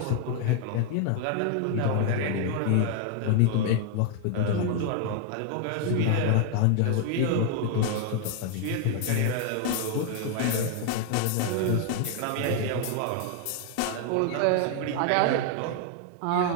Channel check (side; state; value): both; different; correlation 0.00